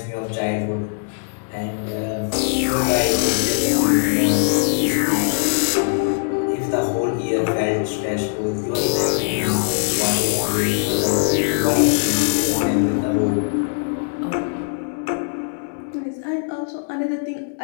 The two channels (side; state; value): right; silent; 62 dB below the other